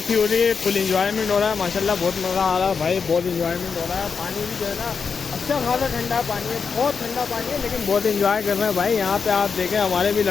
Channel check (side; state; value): right; quieter; 5.6 dB